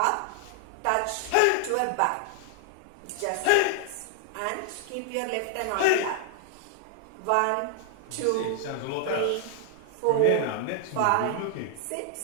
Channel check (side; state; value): both; different; correlation 0.00